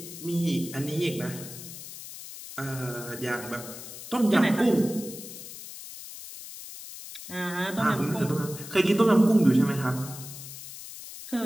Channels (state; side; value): noise; left; hiss, 12 dB below the sound